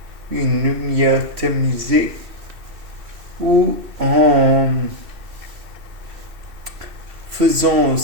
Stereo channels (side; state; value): left; late; 2.6 ms